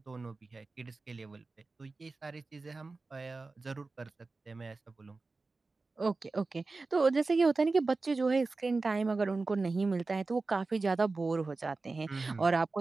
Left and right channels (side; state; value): left; quieter; 3.7 dB